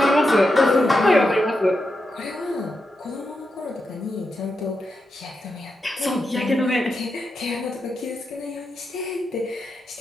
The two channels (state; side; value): normal; both; correlation 0.87